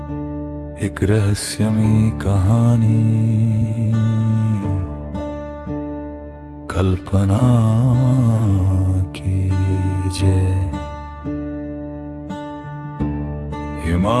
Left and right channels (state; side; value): identical; both; correlation 1.00